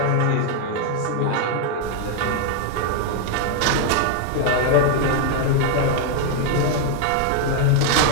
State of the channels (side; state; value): both; different; correlation 0.00